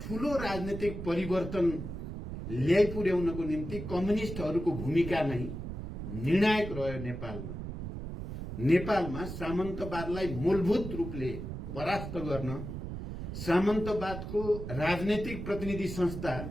ठूलो राजनीतिक परिवर्तन ल्याइपुर्याउनको निम्ति कम्युनिस्टहरूको भूमिका नै निर्णायक रह्यो। नेपालमा सामन्तवादलाई मूलभूत रूपले परास्त गर्न, सामन्तवादको राजनीतिक प्रतिनिधि संस्था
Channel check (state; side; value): noise; right; rumble, 7 dB below the sound